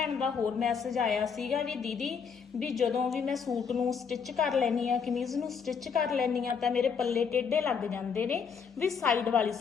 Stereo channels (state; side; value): quieter; right; 6.3 dB